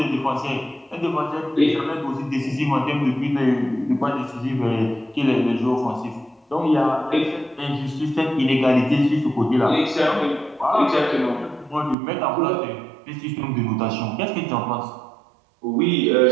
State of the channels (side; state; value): left; drops out; at 12.0 s